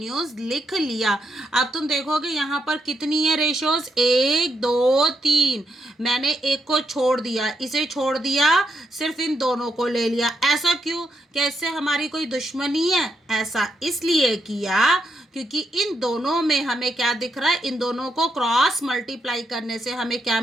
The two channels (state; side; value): normal; both; correlation 0.80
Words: लिख लिया। अब तुम देखोगे यहाँ पर कितनी है रेशोज, 1 2 3, मैंने एक को छोड़ दिया, इसे छोड़ दिया, सिर्फ इन दोनों को ले लिया। ऐसा क्यों? कैसे हमारी कोई दुश्मनी है? ऐसा इसलिए किया क्योंकि इन दोनों में हमें क्या दिख रहा है, इन दोनों को क्रॉस मल्टीप्लाई करने से हमें क्या